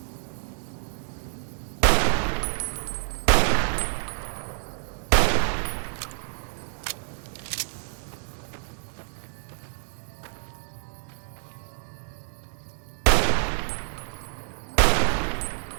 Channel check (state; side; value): silent; left; digital silence